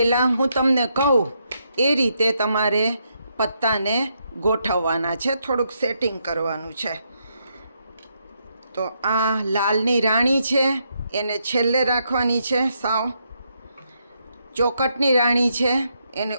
હું તમને કહું એ રીતે તમારે પત્તાને ગોઠવવાના છે, થોડુંક સેટિંગ કરવાનું છે. તો આ લાલની રાણી છે એને છેલ્લે રાખવાની છે, સાવ ચોકટની રાણી છે એને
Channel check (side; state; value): both; inverted; correlation -0.78